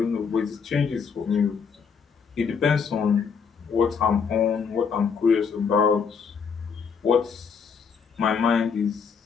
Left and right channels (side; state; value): right; quieter; 6.1 dB